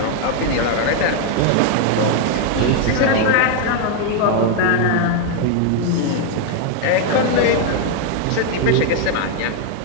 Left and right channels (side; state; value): both; different; correlation 0.00